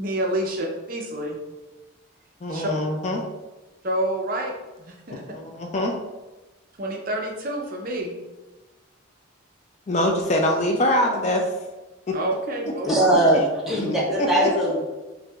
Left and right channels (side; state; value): both; normal; correlation 0.08